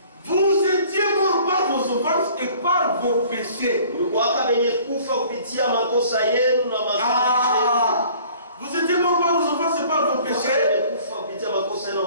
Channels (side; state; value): both; inverted; correlation -0.52